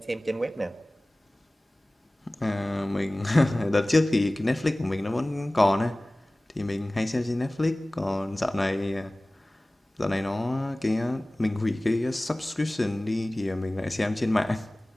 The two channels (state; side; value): normal; both; correlation 0.98